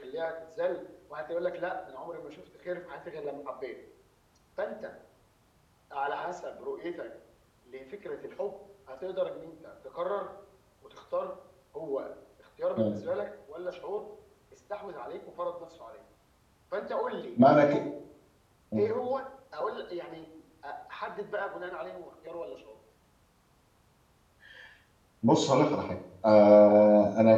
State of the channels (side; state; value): both; identical; correlation 1.00